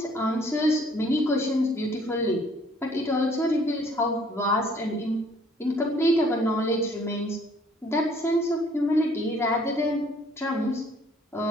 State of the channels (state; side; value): normal; both; correlation 0.60